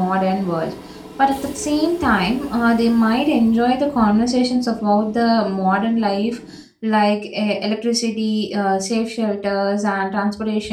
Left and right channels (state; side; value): identical; both; correlation 1.00